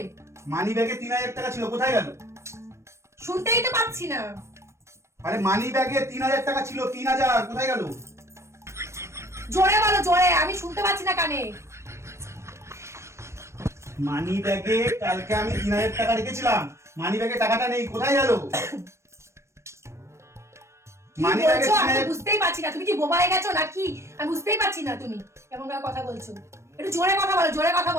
মানি ব্যাগে 3000 টাকা ছিল, কোথায় গেল? শুনতেই তো পাচ্ছি না। আরে মানি ব্যাগে 3000 টাকা ছিল, 3000 কোথায় গেল? জোরে বলো, জোরে, আমি শুনতে পাচ্ছি না কানে। মানি ব্যাগে কালকে আমি 3000 টাকা রেখেছিলাম, মানি ব্যাগে টাকাটা নেই, কোথায় গেল? কি মানি ব্যাগে বলছো? আমি 3000 বুঝতেই পারছি না। তুমি কি বোবা হয়ে গেছো নাকি? আমি বুঝতেই পারছি না তুমি এমন ভাবে কথা বলছো। একটু জোরে কথা বলো, জোরে কথা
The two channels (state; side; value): late; left; 0.13 ms